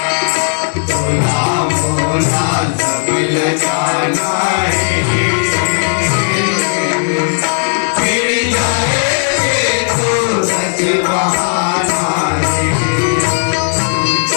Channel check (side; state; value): right; silent; digital silence